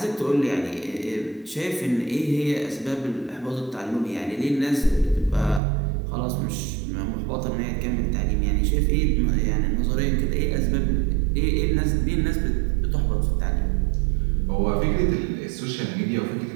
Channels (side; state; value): left; drops out; at 5.6 s